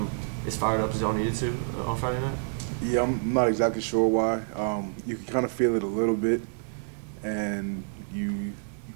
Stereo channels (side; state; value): left; silent; digital silence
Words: as fired up as y'all needed to on Friday night? Yeah, I'm not exactly sure why. You can kind of feel it a little bit, and you